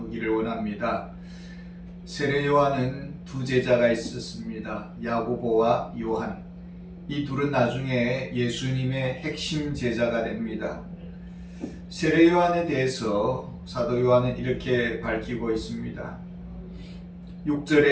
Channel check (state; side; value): identical; both; correlation 1.00